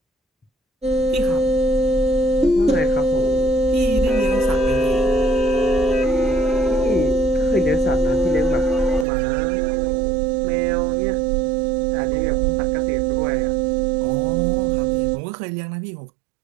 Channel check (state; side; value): drops out; left; at 9.1 s